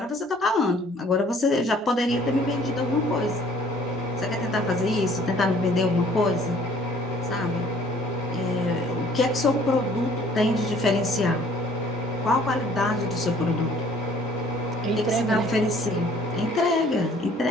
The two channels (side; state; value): both; normal; correlation 0.56